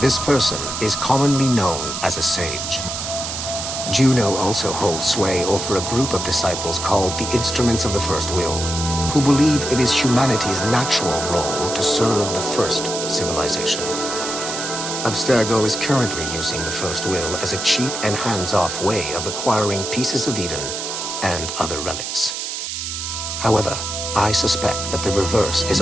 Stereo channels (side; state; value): right; noise; hiss, 5 dB below the sound